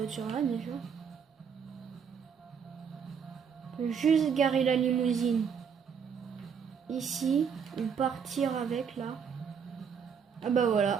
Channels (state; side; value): quieter; left; 6.9 dB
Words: déjà. On peut juste garer la limousine ici ou partir avec là. Ah bah